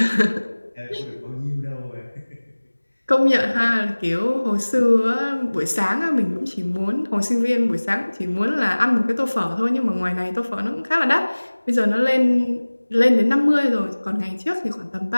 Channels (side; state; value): both; inverted; correlation -1.00